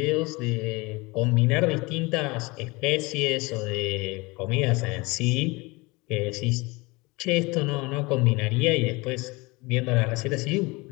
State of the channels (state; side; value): quieter; right; 24.6 dB